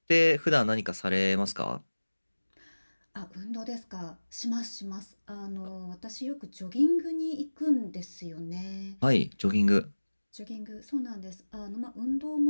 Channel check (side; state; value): both; inverted; correlation -1.00